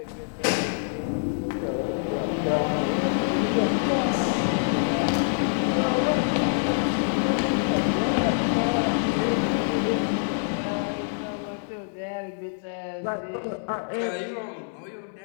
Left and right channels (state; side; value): silent; right; digital silence